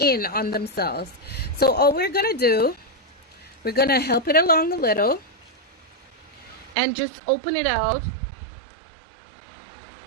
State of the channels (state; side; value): drops out; left; at 6.8 s